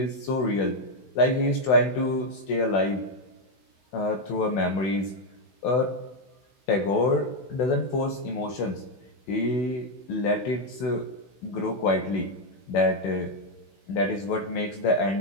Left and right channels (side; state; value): right; late; 16 ms